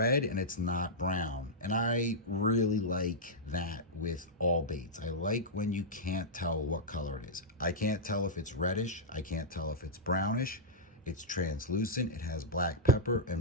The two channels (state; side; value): normal; both; correlation -0.09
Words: and it's not brown. And I really like that with all baits. I like when you can't tell what color it is. I can't tell if it's reddish. I can't tell if it's brownish. It's translucent. It has black pepper